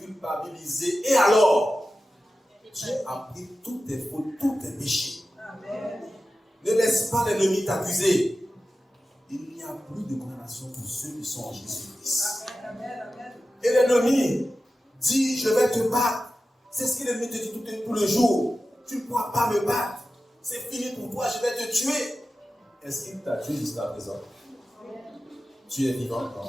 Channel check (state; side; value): normal; both; correlation 0.94